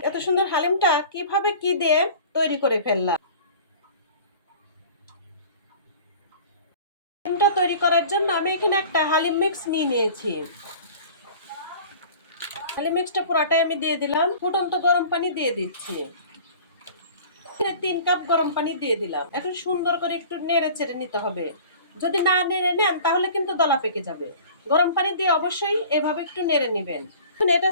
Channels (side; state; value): both; inverted; correlation -0.44